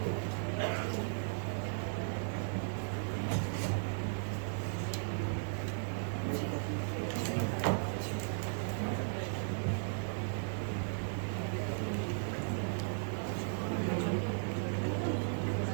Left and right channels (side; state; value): left; silent; 54 dB below the other